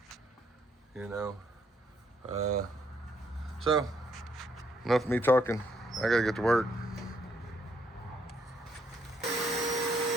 You know. So enough of me talking. I gotta get to work.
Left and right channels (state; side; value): normal; both; correlation 0.72